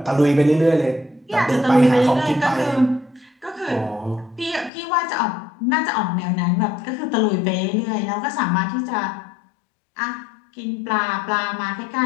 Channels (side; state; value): right; drops out; at 4.7 s